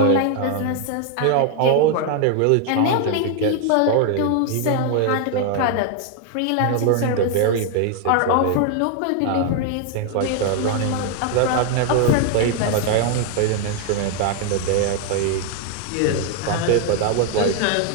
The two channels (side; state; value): both; different; correlation 0.00